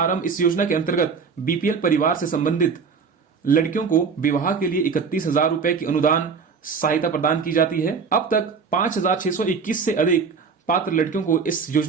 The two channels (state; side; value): quieter; left; 5.5 dB